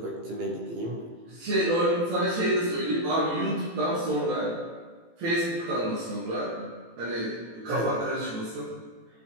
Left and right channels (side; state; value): left; late; 18 ms